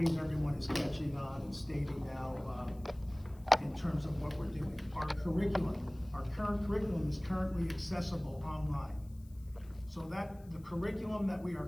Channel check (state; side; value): noise; left; hiss, 28 dB below the sound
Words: everyone is catching on and stating now in terms of what we're doing. Our current curriculum is currently accessible online. So that, the curriculum that we are